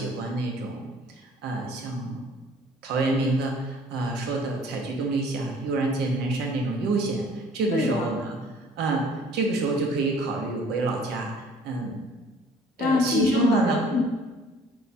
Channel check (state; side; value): normal; both; correlation 0.54